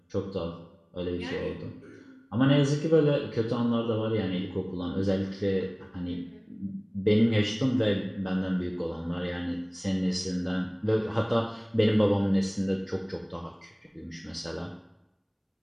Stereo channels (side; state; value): both; identical; correlation 1.00